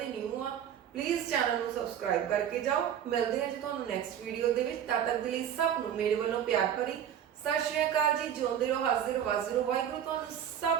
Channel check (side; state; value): left; quieter; 9.5 dB